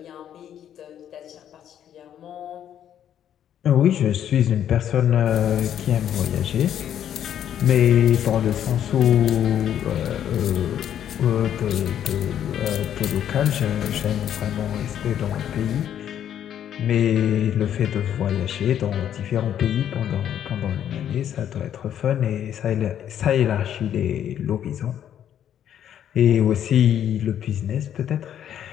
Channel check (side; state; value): right; quieter; 10.1 dB